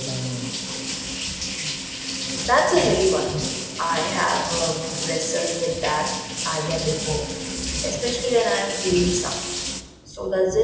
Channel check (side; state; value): both; identical; correlation 1.00